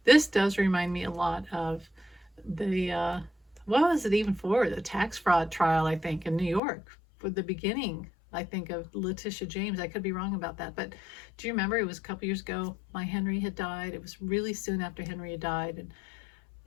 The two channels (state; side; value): drops out; right; at 6.6 s